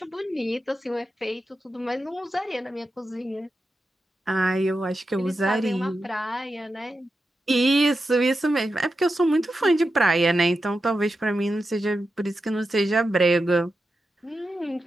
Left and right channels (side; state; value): both; normal; correlation 0.90